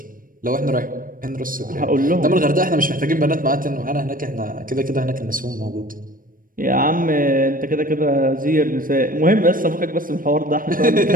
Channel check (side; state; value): left; late; 0.40 ms